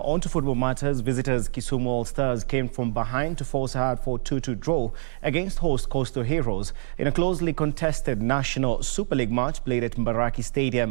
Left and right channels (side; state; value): left; silent; 59 dB below the other